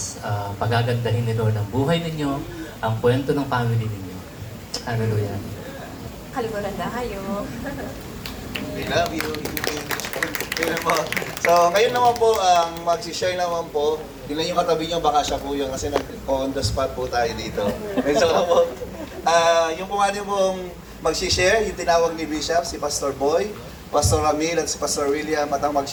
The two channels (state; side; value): identical; both; correlation 1.00